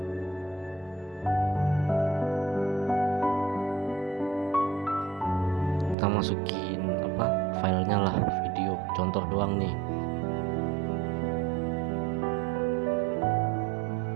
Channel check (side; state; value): left; drops out; at 6.0 s